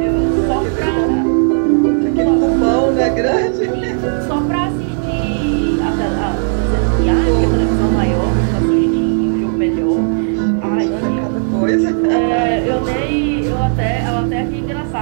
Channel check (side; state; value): left; silent; digital silence